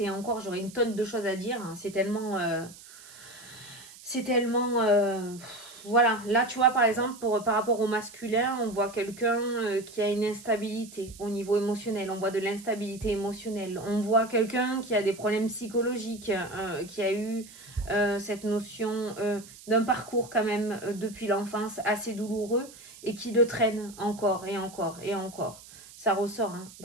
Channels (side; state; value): right; noise; hiss, 19 dB below the sound